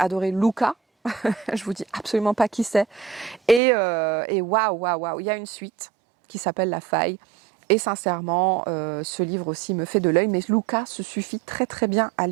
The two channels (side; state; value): left; drops out; at 3.6 s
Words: Luca. Je vous dis absolument pas qui c'est. Et waouh, il y a une suite qui s'appelle La Faille. Et sincèrement, ce livre aussi me fait de l'œil, mais Luca se suffit très très bien à